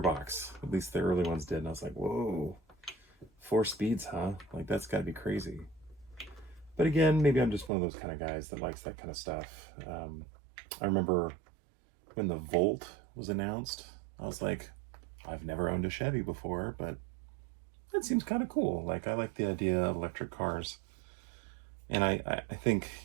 At least the early ones did, and I was like, whoa, 4 speeds, huh? That's got to be crazy. But again, maybe I'm just one of those kind of guys that likes that kind of stuff. I remember when the Volt was announced, I was like, I've never owned a Chevy before, but that seems kind of cool. I like the idea of electric cars. And I think,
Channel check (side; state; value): left; drops out; at 7.7 s